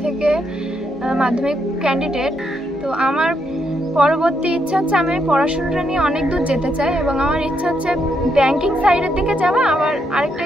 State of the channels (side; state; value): both; normal; correlation 0.78